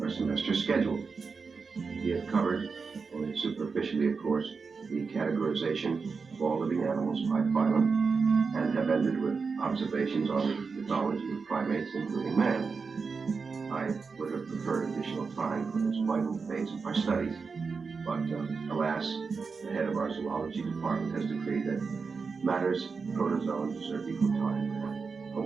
our semester schedule. We have covered, only superficially of course, the categorization of all living animals by phylum, and have ended with observations on the ethology of primates, including man. I would have preferred additional time for this vital phase of our studies, but alas, the head of our zoology department has decreed that matters protozoans deserve equal time for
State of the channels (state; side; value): quieter; left; 4.9 dB